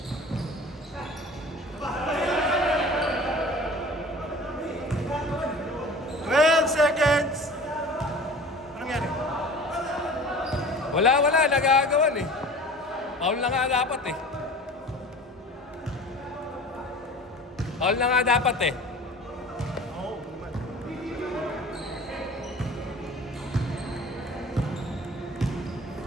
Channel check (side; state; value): both; normal; correlation 0.41